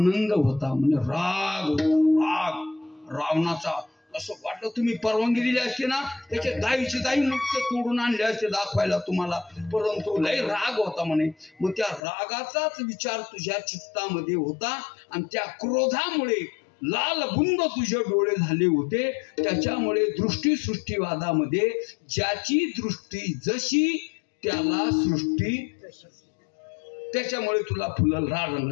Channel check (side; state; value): right; drops out; at 12.0 s